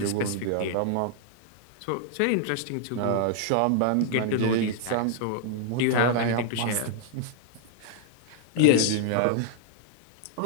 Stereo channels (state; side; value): different; both; correlation -0.01